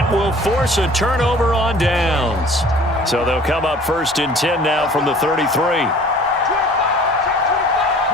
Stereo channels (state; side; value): normal; both; correlation 0.49